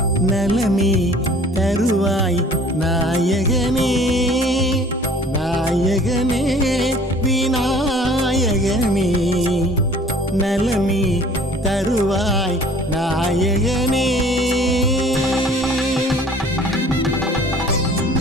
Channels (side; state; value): both; normal; correlation 0.51